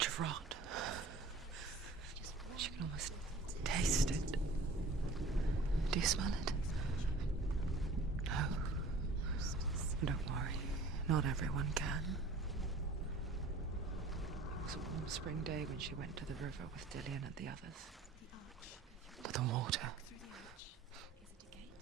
of rot. She can almost taste it. Do you smell it? No. Don't worry. Not everyone can. It was a warm spring day when she went to the river with Dillian and the others. But the water.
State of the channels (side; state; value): left; quieter; 3.1 dB